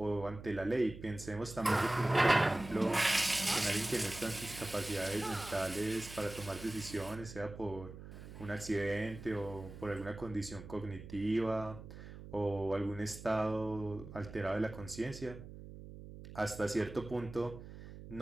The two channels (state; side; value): noise; right; hum, 13 dB below the sound